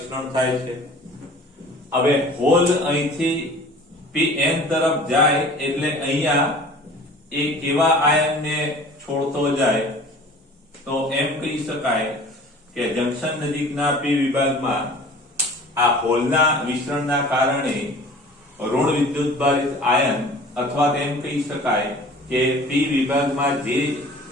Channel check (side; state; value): both; normal; correlation 0.45